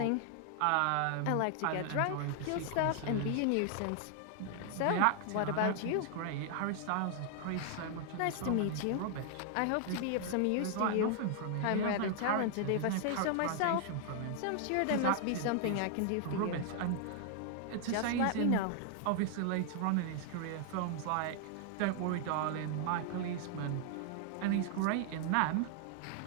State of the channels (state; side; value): different; both; correlation 0.00